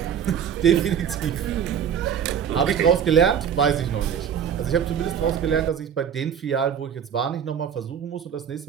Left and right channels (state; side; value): quieter; left; 8.3 dB